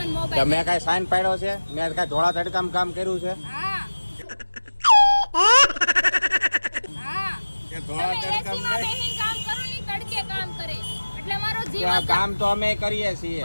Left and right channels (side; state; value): both; inverted; correlation -1.00